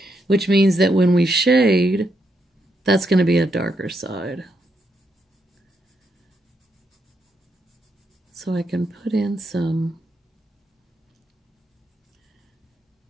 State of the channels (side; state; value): both; normal; correlation 0.80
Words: which means that when we shade, that's going to be a darker side. So I can put in some